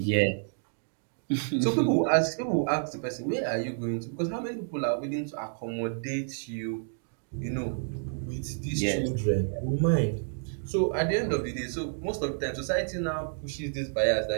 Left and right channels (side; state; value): left; silent; digital silence